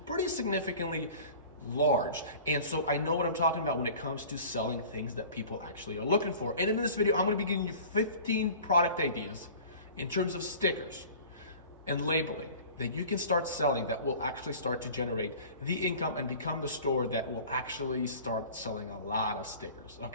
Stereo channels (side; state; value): both; inverted; correlation -0.43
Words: significantly large. And so I know what I'm talking about when it comes to selling things that people actually are looking for. And in this video, I'm going to be giving you 15 product ideas in terms of stickers and labeling that you can start selling that will actually start to generate the income and become the store that will actually start selling a lot of stickers.